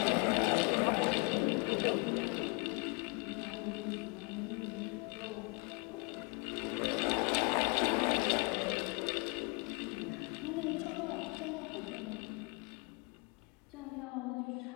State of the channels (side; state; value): right; quieter; 32.3 dB